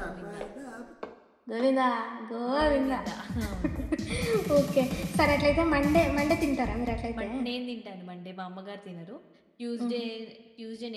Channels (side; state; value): both; identical; correlation 1.00